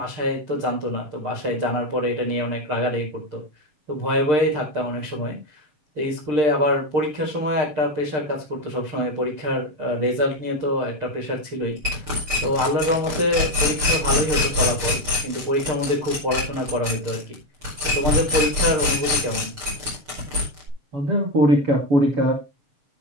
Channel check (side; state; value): left; late; 6.7 ms